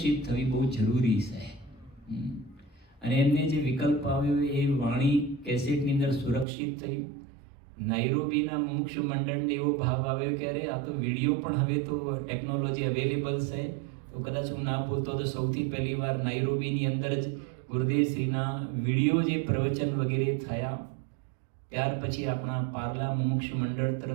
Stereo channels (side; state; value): left; drops out; at 6.5 s